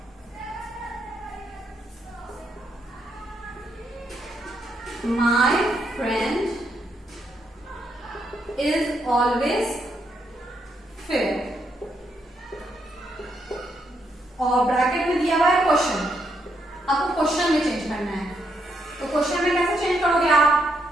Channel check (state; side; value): normal; both; correlation 0.78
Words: My friend is always fair, और ब्रैकेट में दिया हुआ है क्वेश्चन, आपको क्वेश्चन में चेंज करना है। तो क्वेश्चन में कैसे चेंज करोगे आप,